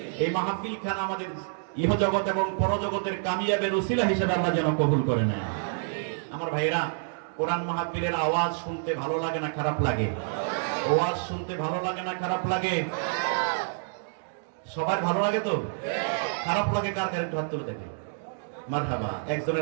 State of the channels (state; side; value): silent; left; digital silence